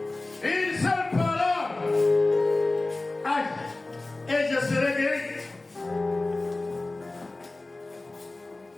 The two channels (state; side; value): quieter; right; 3.0 dB